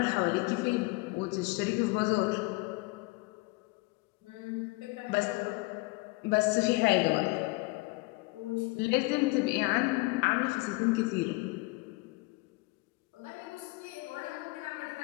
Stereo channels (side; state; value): right; quieter; 24.1 dB